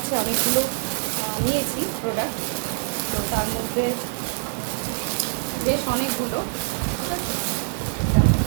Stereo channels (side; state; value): left; silent; digital silence